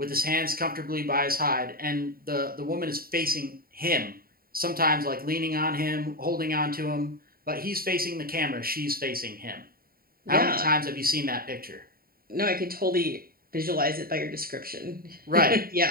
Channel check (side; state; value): left; late; 0.43 ms